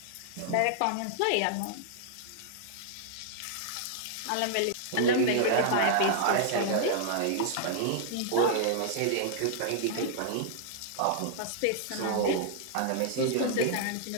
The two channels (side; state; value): both; different; correlation -0.01